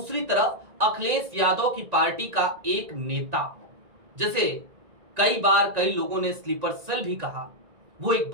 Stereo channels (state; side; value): late; left; 1.9 ms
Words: तरफ अखिलेश यादव की पार्टी का एक नेता, जिसे कई बार कई लोगों ने स्लीपर सेल भी कहा, वो एक